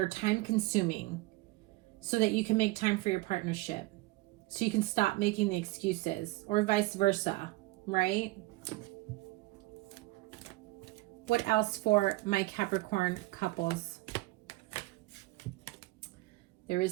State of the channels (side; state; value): left; quieter; 20.7 dB